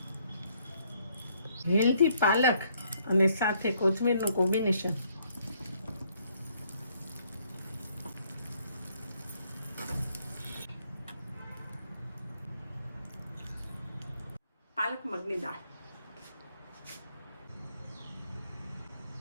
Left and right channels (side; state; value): both; inverted; correlation -0.68